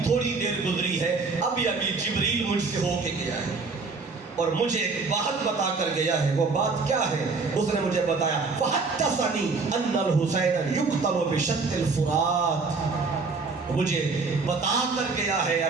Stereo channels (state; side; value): quieter; left; 4.3 dB